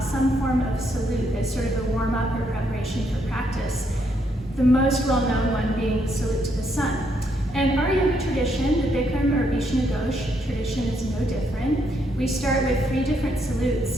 some form of salute as sort of a warm-up or preparation for practice. The most well-known one being the salute to the sun. And our yoga tradition, the Bikram or Vishnughosh tradition, is no different. We start with 3 different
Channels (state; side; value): normal; both; correlation 0.74